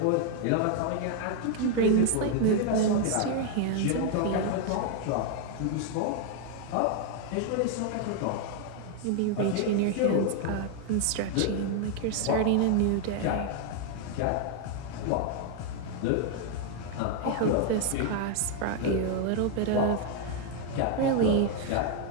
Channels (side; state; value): both; different; correlation 0.00